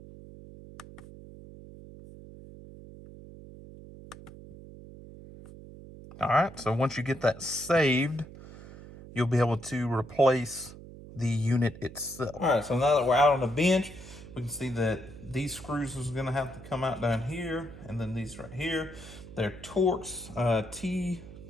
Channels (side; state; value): right; noise; hum, 16 dB below the sound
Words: All right, so once you get that saved, you'll be able to replace the unit itself. All right, so now that we're out on the bench, we can see that these screws is gonna have to come out down here, and then these right here. They're Torx